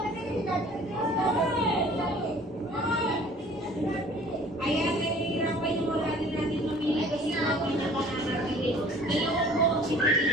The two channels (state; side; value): normal; both; correlation 0.50